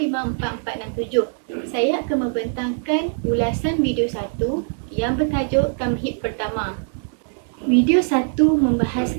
Saya akan membentangkan ulasan video 1 yang bertajuk Tamhid Pertama. Video 1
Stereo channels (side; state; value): left; silent; 64 dB below the other